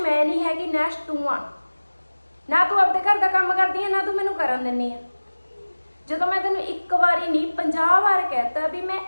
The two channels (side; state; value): both; inverted; correlation -1.00